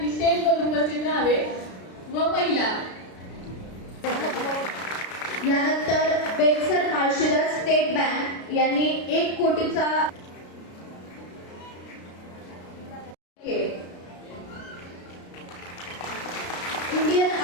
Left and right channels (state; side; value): late; right; 33 ms